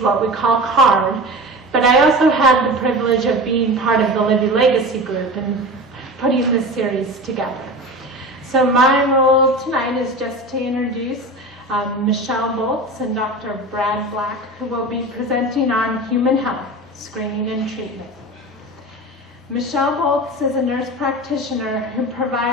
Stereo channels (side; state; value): both; normal; correlation 0.31